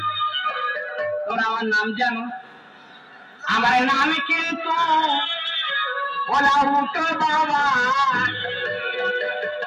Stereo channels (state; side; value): identical; both; correlation 1.00